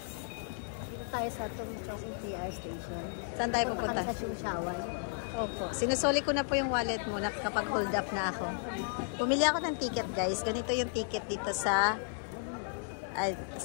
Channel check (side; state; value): right; silent; digital silence